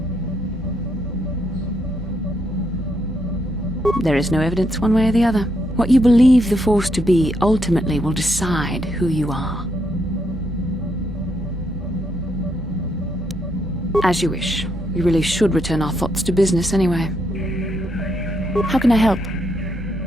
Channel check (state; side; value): normal; both; correlation 0.77